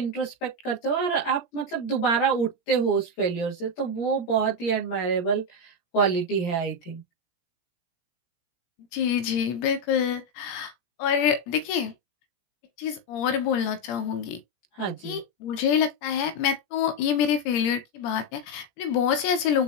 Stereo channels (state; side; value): late; right; 17 ms